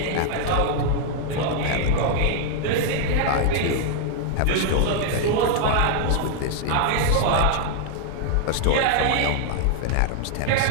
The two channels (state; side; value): different; both; correlation 0.00